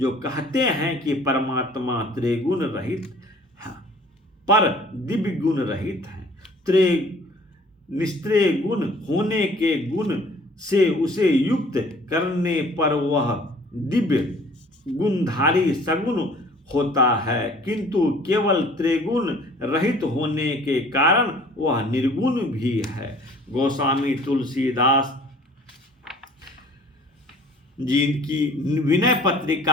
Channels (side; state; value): both; normal; correlation 0.52